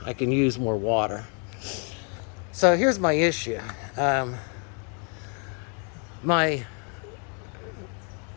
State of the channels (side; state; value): right; quieter; 39.0 dB